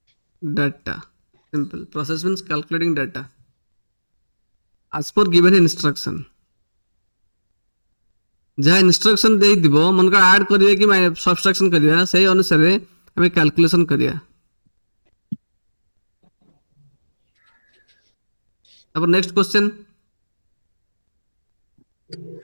data. Simple. Process means calculating data as per given instruction. जहाँ instruction दे दिबो मन को add करिए कि subtraction करिया सही अनुसार हमें कैलकुलेशन करिया अब next question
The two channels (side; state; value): both; inverted; correlation -1.00